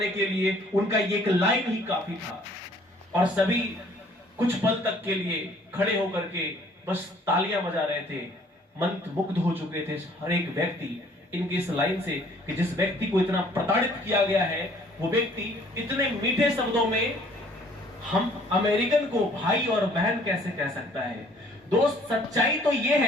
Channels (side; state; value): both; normal; correlation 0.58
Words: के लिए उनका ये एक लाइन ही काफी था। और सभी कुछ पल तक के लिए खड़े होकर के बस तालियां बजा रहे थे, मंत्रमुग्ध हो चुके थे हर एक व्यक्ति इनकी इस लाइन से कि जिस व्यक्ति को इतना प्रताड़ित किया गया है, वो व्यक्ति इतने मीठे शब्दों में हम अमेरिकन को भाई और बहन कैसे कह सकता है। दोस्त, सच्चाई तो यह